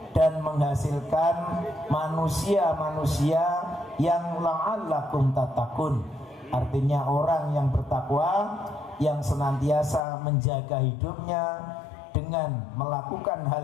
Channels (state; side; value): drops out; right; at 10.0 s